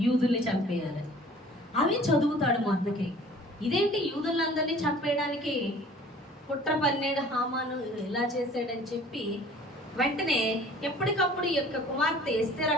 యూదుల్ని చంపేయాలి. అవి చదువుతాడు మొర్దెకై. ఇదేంటి యూదులందరినీ చంపేయడానికి కుట్ర పన్నేడు హామాను ఇలా చేసాడని చెప్పి వెంటనే ఎప్పటికప్పుడు ఈ యొక్క కుమార్తె ఎస్తేరు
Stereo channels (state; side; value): normal; both; correlation 0.49